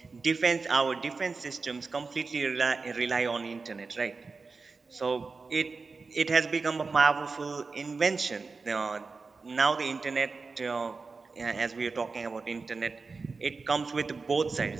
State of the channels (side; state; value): left; quieter; 4.3 dB